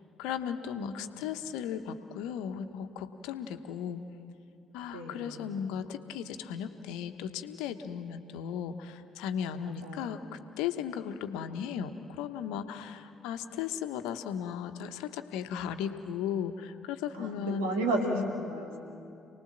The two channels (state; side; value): quieter; right; 4.8 dB